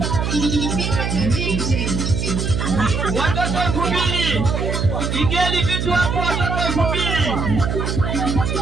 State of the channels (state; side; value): noise; right; hum, 1 dB below the sound